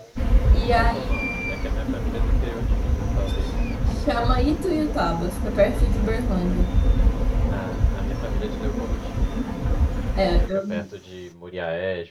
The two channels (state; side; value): identical; both; correlation 1.00